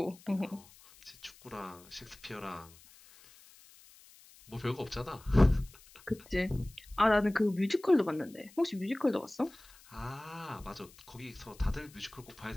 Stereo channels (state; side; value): noise; left; hiss, 24 dB below the sound